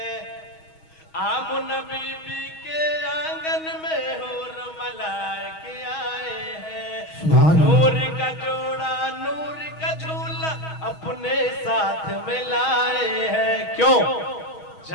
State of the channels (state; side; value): late; right; 6.3 ms